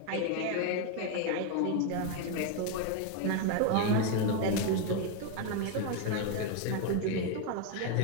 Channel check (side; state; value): both; different; correlation 0.01